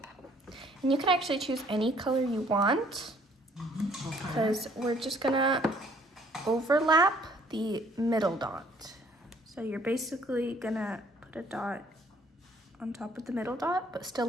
And you can actually choose any color you want, Okay. because we're just gonna overlap the middle dot. So you're basically gonna put a dot on top of the middle dot, but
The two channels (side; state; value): both; normal; correlation 0.61